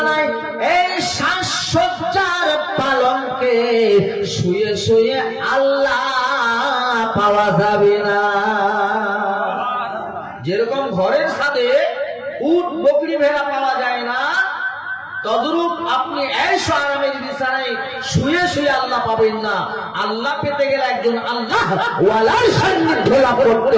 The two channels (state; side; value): identical; both; correlation 1.00